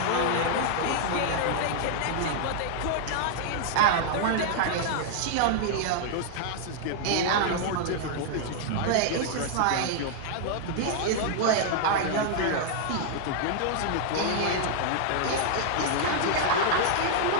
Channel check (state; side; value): different; both; correlation -0.01